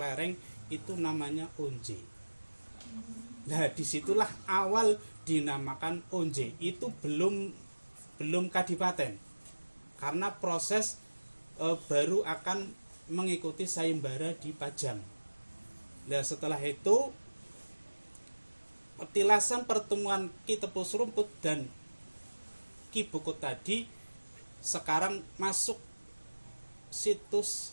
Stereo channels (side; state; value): both; inverted; correlation -1.00